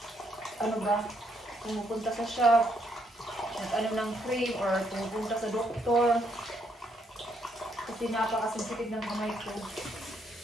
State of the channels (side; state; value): both; normal; correlation 0.73